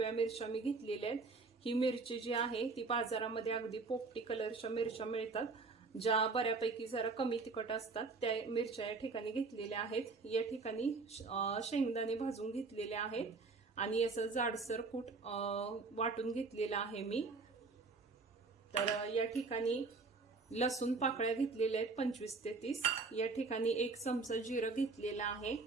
मिरच्या मी घेतलेल्या आहेत। ही मिरची जी आहे ती बाजारामध्ये अगदी पोपटी कलरच्या मिरच्या मिळतात, ज्या बऱ्यापैकी जरा कमी तिखट असतात, त्या मिरच्या या ठिकाणी घेतलेल्या आहेत। या ठिकाणी शेंगदाणे भाजून घेतलेले आहेत आणि असं जाडसर कूट वाटून घेतलेला आहे मी। तर या ठिकाणी लसूण पाकळ्या घेतलेल्या आहेत 25 ते 30। या ठिकाणी 1 चमचा जिरं घेतलेला आहे।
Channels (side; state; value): left; quieter; 4.1 dB